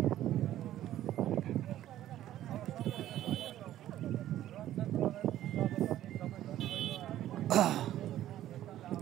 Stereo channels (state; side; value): quieter; left; 12.9 dB